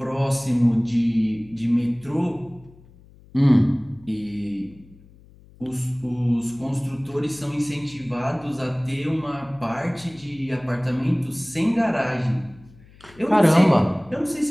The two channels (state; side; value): noise; left; hum, 25 dB below the sound